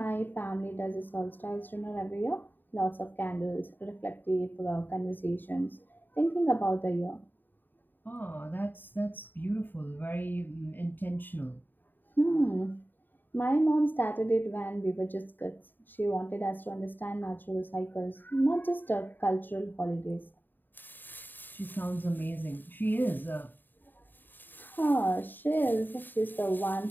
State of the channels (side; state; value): right; late; 0.091 ms